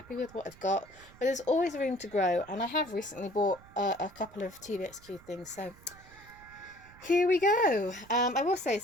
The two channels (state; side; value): noise; right; rumble, 23 dB below the sound